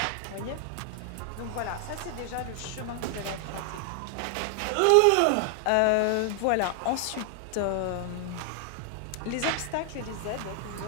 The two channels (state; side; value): different; both; correlation 0.00